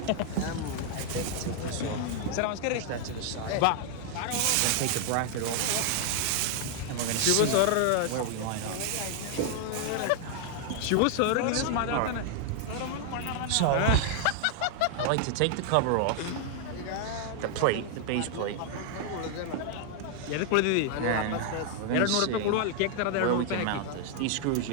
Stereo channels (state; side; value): different; both; correlation 0.00